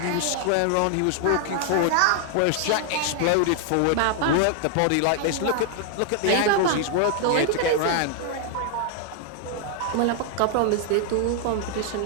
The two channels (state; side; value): different; both; correlation 0.00